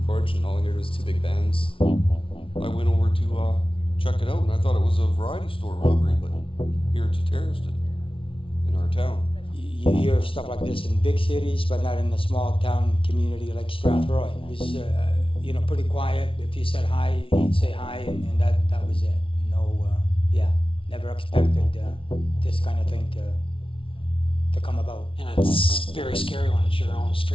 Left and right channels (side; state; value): right; late; 0.25 ms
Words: porch, and all I heard was 2 big bangs. I went over to check it out, and I thought it was a variety store robbery, but here it's a terrorist in our town. You hear stuff like this in big cities, but not in a small town community like Strathroy. It was, pretty quiet. If you said hi, he'd say hi, and that was it. No, never expected this kind of thing to come about. And it's very scary when it's your own